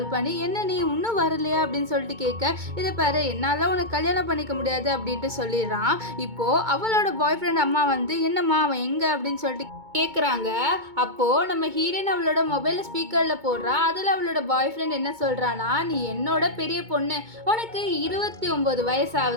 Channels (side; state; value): left; late; 2.2 ms